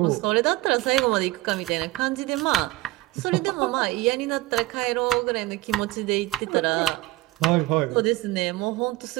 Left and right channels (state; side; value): quieter; left; 18.3 dB